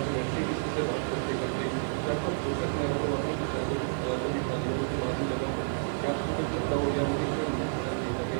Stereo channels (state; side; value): silent; left; digital silence